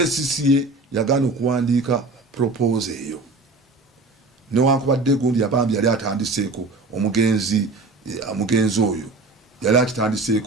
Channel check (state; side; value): quieter; left; 3.5 dB